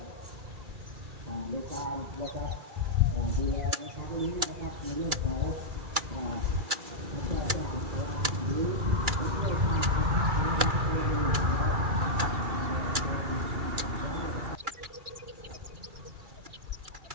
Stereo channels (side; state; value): left; late; 2.3 ms